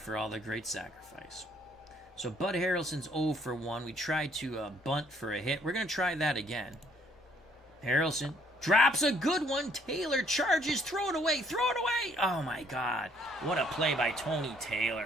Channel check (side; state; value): both; normal; correlation 0.64